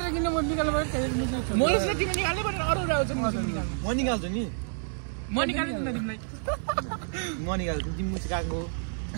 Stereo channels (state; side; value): silent; left; digital silence